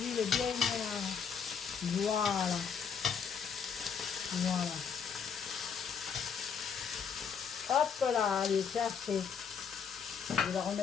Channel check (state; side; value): quieter; right; 6.8 dB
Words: est bien. Voilà. Voilà. Hop là, allez, c'est assez. Je vais la